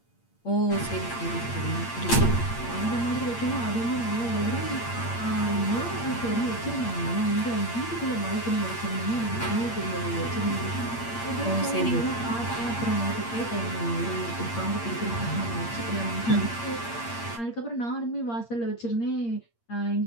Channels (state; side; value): late; right; 8.6 ms